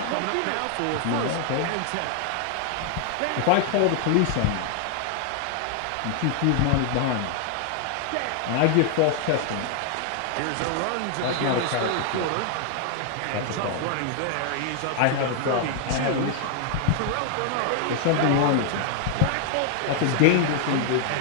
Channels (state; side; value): different; both; correlation 0.00